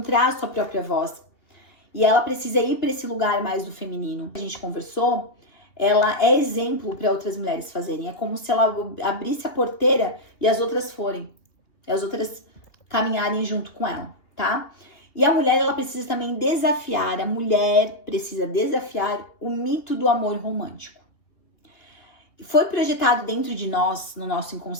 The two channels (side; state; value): right; late; 2.9 ms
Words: a sua própria voz. E ela precisa ir para esse lugar mais do feminino. A gente conversou, ela é exemplo para outras mulheres fazerem. É como se ela abrisse a porteira e as outras forem. E as outras caminharem junto com ela, tá? E a mulher, ela precisa também desafiar, a mulher precisa desafiar o mito do amor romântico. Foi projetado dentro de nós, no nosso